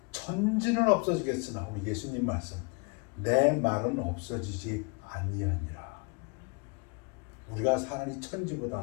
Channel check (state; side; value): quieter; right; 32.1 dB